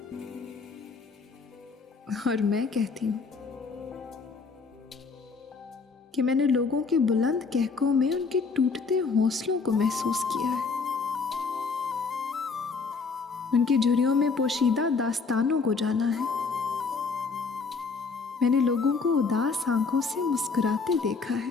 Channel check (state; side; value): quieter; right; 4.7 dB